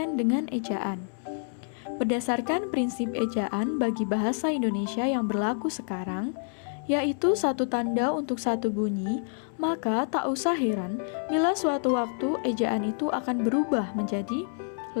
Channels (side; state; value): right; silent; 59 dB below the other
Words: dengan ejaan. Berdasarkan prinsip ejaan bagi bahasa Indonesia yang berlaku sekarang, yaitu satu tanda untuk satu bunyi, maka tak usah heran bila suatu waktu ejaan itu akan berubah menjadi